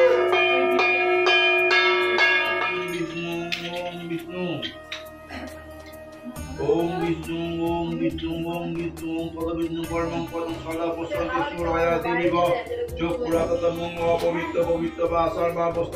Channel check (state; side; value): identical; both; correlation 1.00